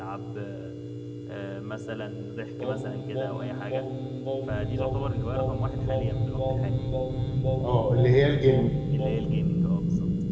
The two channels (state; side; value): identical; both; correlation 1.00